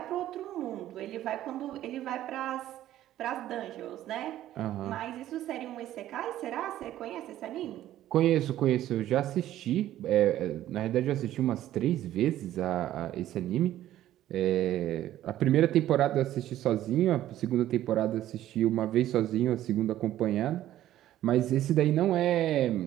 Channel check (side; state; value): left; quieter; 13.1 dB